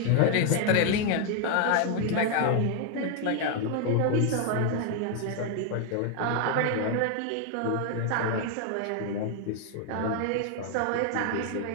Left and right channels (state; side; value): different; both; correlation 0.00